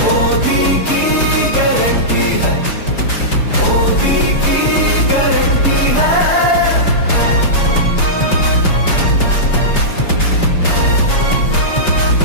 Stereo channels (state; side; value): late; right; 5.3 ms